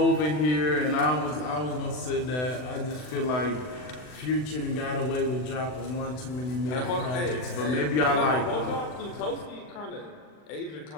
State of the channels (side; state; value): right; late; 40 ms